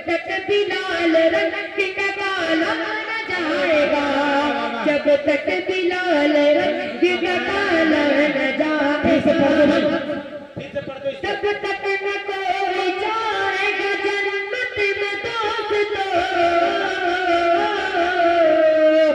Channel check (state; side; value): identical; both; correlation 1.00